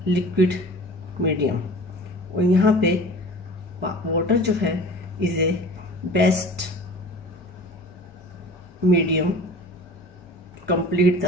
liquid medium। और यहाँ पे वाटर जो है is a best medium complete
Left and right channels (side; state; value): both; normal; correlation 0.41